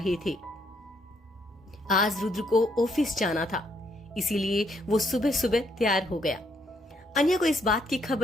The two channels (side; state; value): both; normal; correlation 0.72